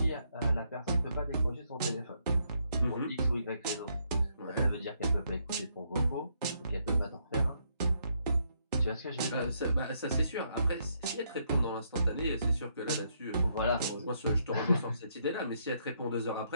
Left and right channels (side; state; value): both; inverted; correlation -0.74